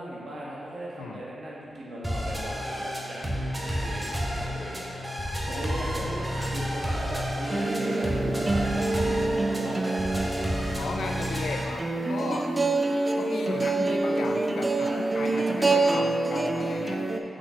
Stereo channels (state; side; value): normal; both; correlation 0.91